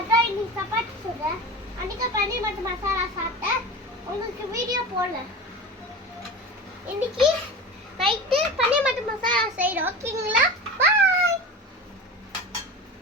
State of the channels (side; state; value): both; normal; correlation 0.31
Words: இன்னைக்கு சப்பாத்தி சொல்றேன். அன்னைக்கு பன்னீர் மற்றும் மசாலா சாப்பிட்டேன். உங்களுக்கு வீடியோ போடல. இன்னைக்கு நைட்டு பன்னீர் மற்றும் மசாலா செய்யறோம். ஓகேங்களா? பாய்.